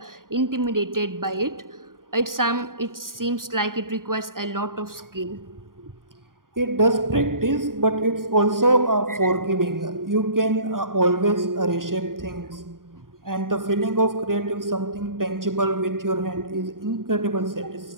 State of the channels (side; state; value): left; late; 0.91 ms